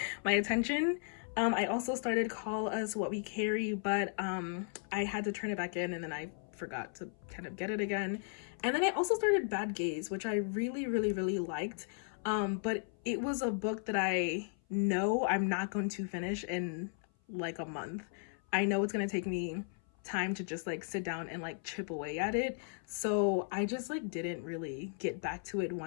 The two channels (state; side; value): silent; right; 54 dB below the other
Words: my attention. I also started Call Us What We Carry, but I had to turn it back in and then I forgot to kind of get it again. And then I also started Bad Gaze, which I really liked. But it was a book that I know I'm not going to finish in like a month. I know it's gonna take me time to just like sit down and like chip away at it. So I just like didn't really get back to it